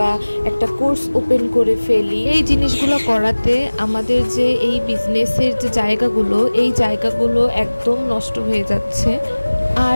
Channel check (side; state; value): both; inverted; correlation -1.00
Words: একটা কোর্স ওপেন করে ফেলি। এই জিনিসগুলো করাতে আমাদের যে এই বিজনেসের যে জায়গাগুলো, এই জায়গাগুলো একদম নষ্ট হয়ে যাচ্ছে।